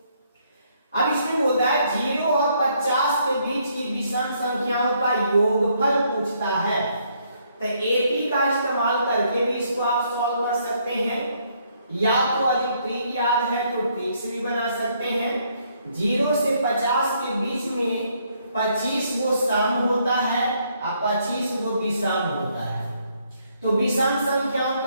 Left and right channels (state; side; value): inverted; both; correlation -0.70